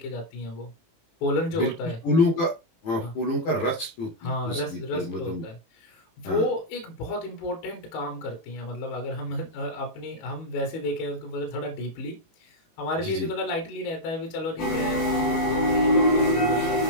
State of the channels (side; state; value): right; late; 18 ms